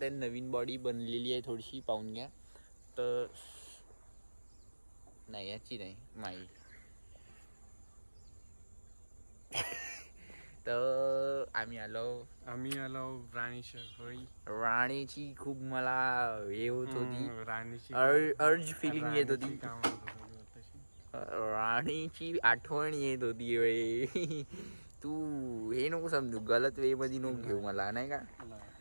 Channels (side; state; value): both; inverted; correlation -1.00